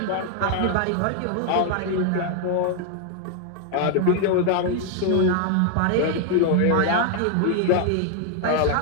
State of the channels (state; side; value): different; both; correlation 0.00